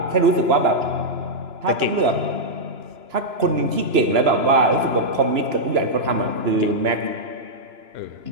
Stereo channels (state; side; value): late; left; 2.9 ms